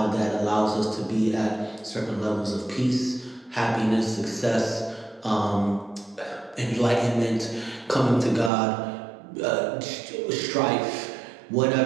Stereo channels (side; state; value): left; drops out; at 8.5 s